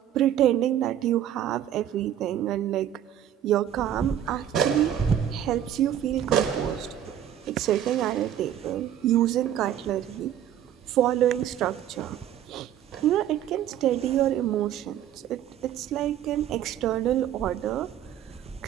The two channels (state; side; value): quieter; left; 10.6 dB